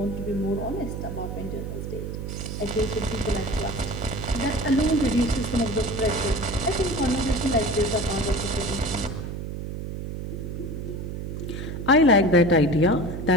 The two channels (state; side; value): noise; right; hum, 6 dB below the sound